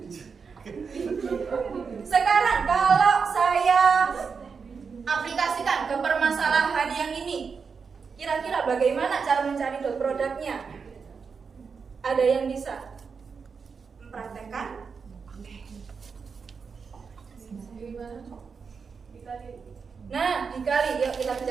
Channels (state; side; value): quieter; left; 5.6 dB